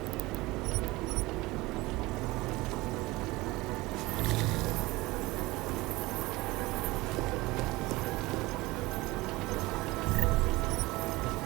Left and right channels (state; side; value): quieter; left; 20.9 dB